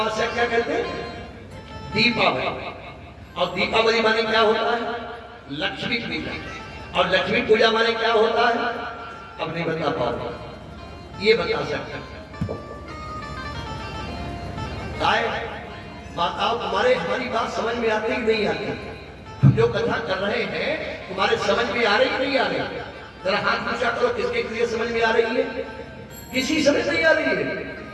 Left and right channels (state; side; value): identical; both; correlation 1.00